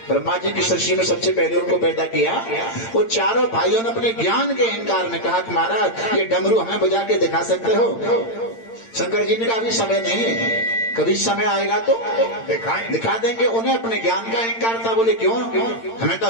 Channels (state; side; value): late; right; 8.8 ms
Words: ब्रह्मा जी की सृष्टि में सबसे पहले उनको पैदा किया, वो चारों भाइयों ने अपने ज्ञान के अहंकार में कहा कि महाराज ये डमरू हमें बजा के दिखा सकते हो? शंकर जी ने कहा अभी समय नहीं है, कभी समय आएगा तो दिखा देंगे। उन्हें अपने ज्ञान का अहंकार था। बोले क्यों, हमें तो